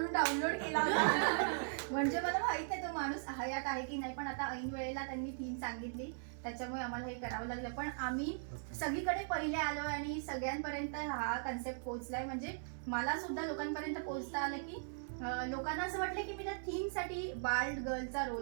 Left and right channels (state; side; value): silent; left; digital silence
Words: डाउनलोड केला होता. म्हणजे मला माहित नाही तो माणूस हयात आहे की नाही, पण आता ऐन वेळेला त्यांनी थीम सांगितली त्याच्यामुळे आम्हाला हे करावं लागलं. पण आम्ही सगळीकडे पहिले आलो आणि सगळ्यांपर्यंत हा कन्सेप्ट पोहोचलाय. म्हणजे मला सुद्धा लोकांपर्यंत पोहोचता आलं की लोकांना असं वाटलं की मी त्या थीमसाठी बाल्ड गर्लचा